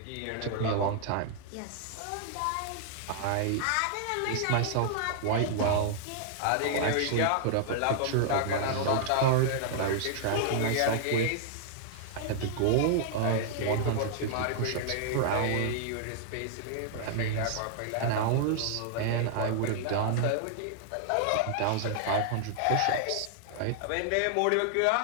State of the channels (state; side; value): different; both; correlation -0.01